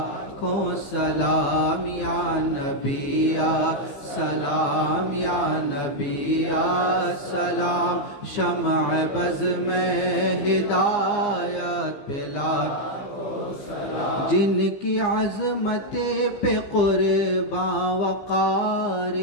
کو سلام یا نبی السلام یا نبی السلام شمع بز میں ہدایت پلا جن کی عظمت پہ قرباں وقار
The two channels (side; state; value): right; late; 15 ms